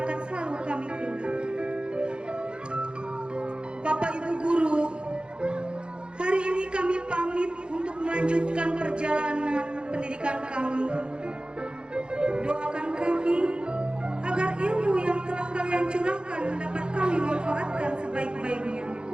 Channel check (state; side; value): late; left; 0.052 ms